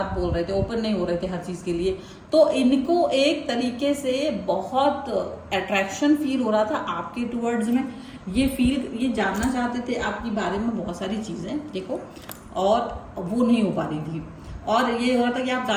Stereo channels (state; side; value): identical; both; correlation 1.00